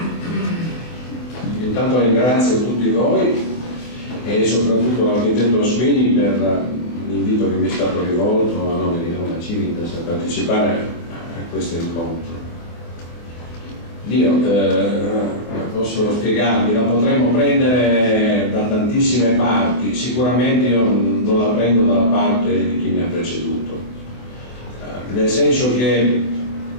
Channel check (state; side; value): late; right; 24 ms